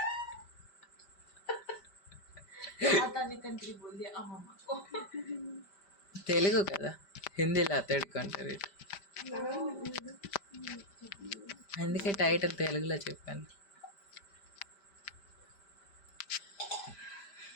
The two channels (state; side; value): late; right; 5.1 ms